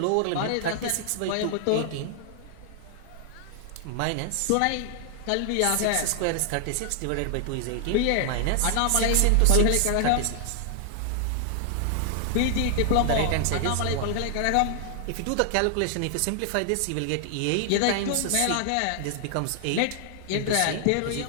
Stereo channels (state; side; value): different; both; correlation 0.00